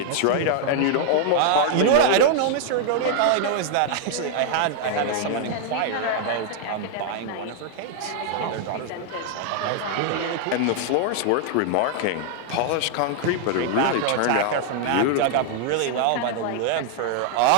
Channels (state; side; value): different; both; correlation 0.00